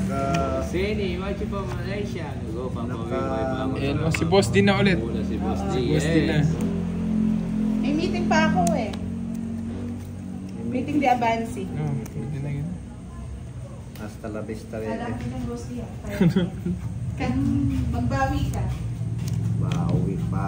Sini, watch you from Malaysia. Go, Papa. Ayan, si Boss din na ulit. Muna si Boss D. Boss din na. May meeting pa ako eh. Meeting di Abansi. Oh, pwede na yun. Hasta la vista, Alam bebe. ko ng boss niya. Kan magbawi ka. Bawi.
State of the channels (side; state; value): both; identical; correlation 1.00